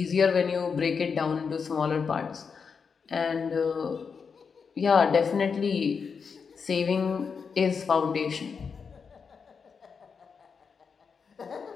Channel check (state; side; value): quieter; right; 5.8 dB